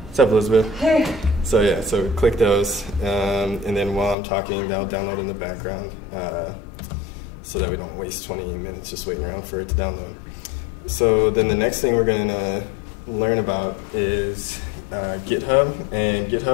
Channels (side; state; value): right; drops out; at 4.2 s